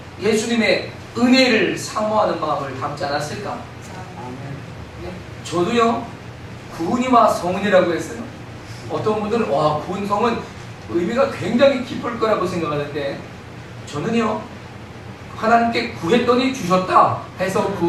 예수님의 은혜를 사모하는 마음을 담지 않았을까? 예. 저도요, 구은이와 성은이라고 했어요. 어떤 분들은 와, 구은 성은 의미가 굉장히 깊을 거라고 생각하는데 저는요, 하나님께 구했더니 주셨다 해서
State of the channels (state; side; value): identical; both; correlation 1.00